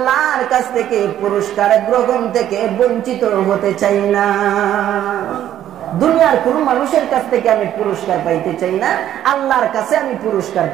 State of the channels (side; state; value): left; quieter; 11.5 dB